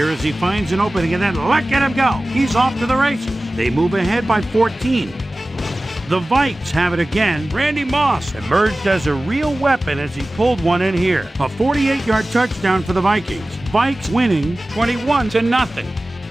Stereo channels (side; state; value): both; normal; correlation 0.97